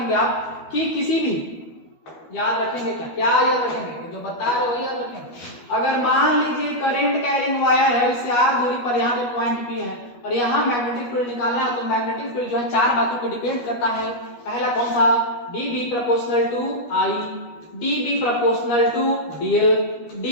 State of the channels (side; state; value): right; late; 12 ms